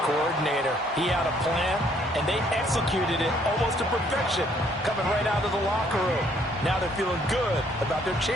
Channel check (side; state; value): both; normal; correlation 0.65